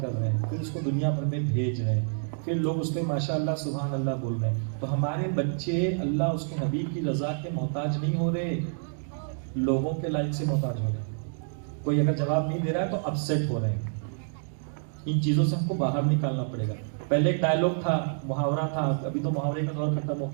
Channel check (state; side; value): silent; left; digital silence